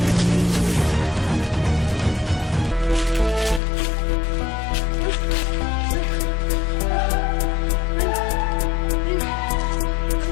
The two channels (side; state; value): right; drops out; at 3.6 s